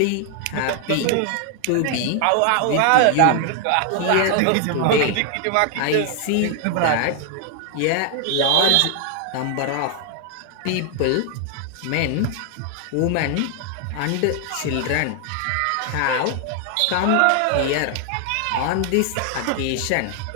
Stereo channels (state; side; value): different; both; correlation 0.00